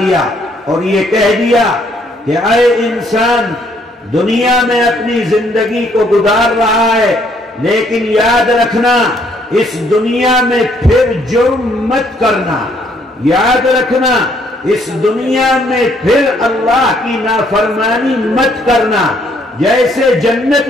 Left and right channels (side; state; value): both; normal; correlation 0.67